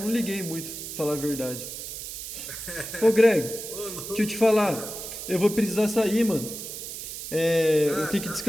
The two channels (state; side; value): noise; right; hiss, 8 dB below the sound